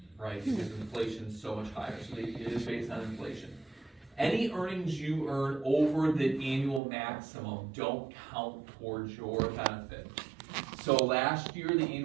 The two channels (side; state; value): left; drops out; at 6.8 s